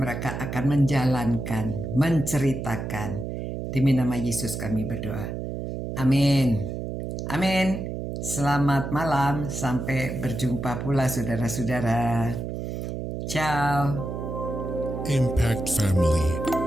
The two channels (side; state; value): right; noise; hum, 5 dB below the sound